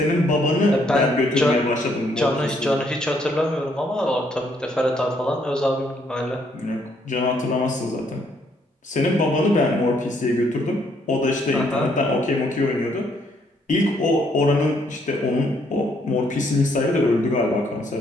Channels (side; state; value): both; normal; correlation 0.69